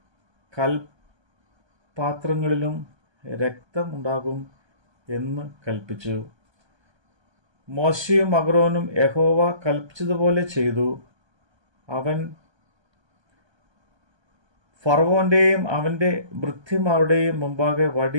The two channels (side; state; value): left; late; 1.2 ms